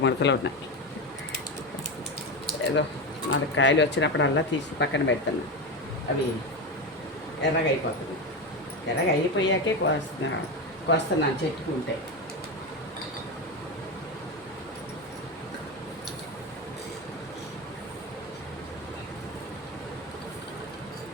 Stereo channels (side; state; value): both; normal; correlation 0.17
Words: ఉన్నాయి. ఏదో 4 కాయలు వచ్చినప్పుడల్లా తీసి పక్కన పెడతాను. అవి ఎర్రగా అయిపోతుంది. ఎర్రగా అయిపోయాకే కోస్తున్నాను చెట్టుకుంటే.